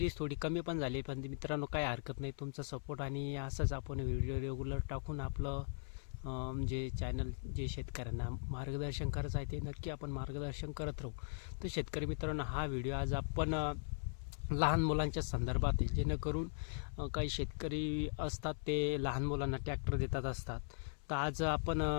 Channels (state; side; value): silent; right; 51 dB below the other